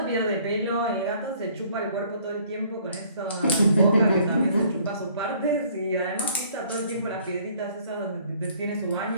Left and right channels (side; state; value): both; inverted; correlation -0.58